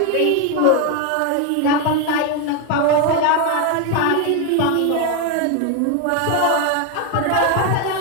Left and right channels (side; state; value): both; different; correlation 0.01